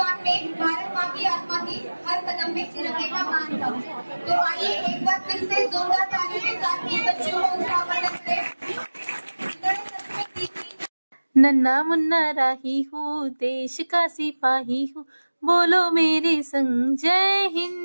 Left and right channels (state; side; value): inverted; both; correlation -1.00